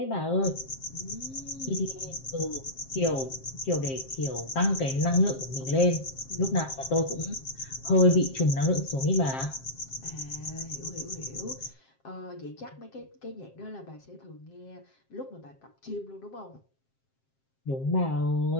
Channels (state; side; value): late; right; 7.5 ms